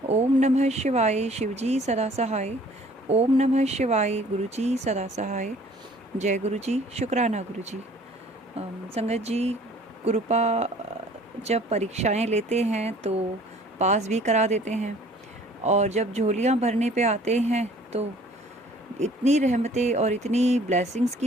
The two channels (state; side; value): normal; both; correlation 0.54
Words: ओम नमः शिवाय, शिवजी सदा सहाय। ओम नमः शिवाय, गुरु जी सदा सहाय। जय गुरु जी, शुक्राना गुरु जी। संगत जी, गुरुपा जब परीक्षाएं लेते हैं तो पास भी करा देते हैं, और जब झोलियाँ भरने पे आते हैं तो इतनी रहमतें और इतनी ब्लेसिंग्स